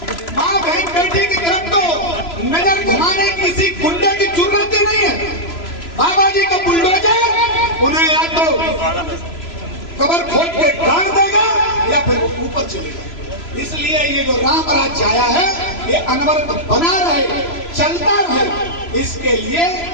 माँ बहन बेटी की तरफ तो नजर घुमाने किसी गुंडे की जरूरत ही नहीं है। बाबा जी का बुलडोजर उन्हें या तो कबर खोद के गाड़ देगा या फिर वो ऊपर चलेगा। इसलिए ये जो राम राज्य आया है ये अनवरत बना रहे, चलता रहे, इसके लिए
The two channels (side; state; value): right; late; 3.0 ms